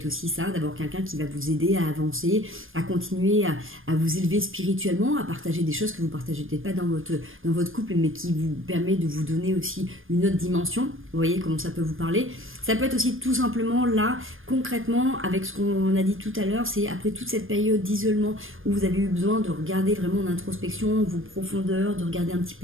aussi ça, d'abord quelqu'un qui va vous aider à avancer, à continuer à vous élever spirituellement, à partager des choses que vous partagez peut-être pas dans votre couple, mais qui vous permet de vous donner aussi une autre dimension. Vous voyez comment ça peut vous parler. Ça peut être aussi tout simplement là, concrètement, avec ce qu'on a dit tout à l'heure, c'est après toute cette période d'isolement où vous avez eu besoin de regarder vraiment en introspection, vos profondeurs, de regarder un petit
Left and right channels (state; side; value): late; left; 0.59 ms